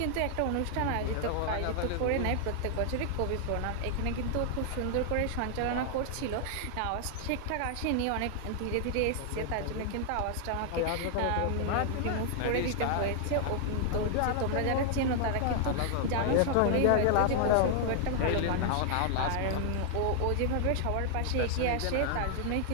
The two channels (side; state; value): both; different; correlation 0.00